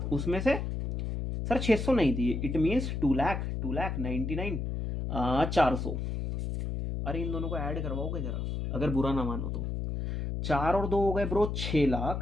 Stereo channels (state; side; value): noise; left; hum, 3 dB below the sound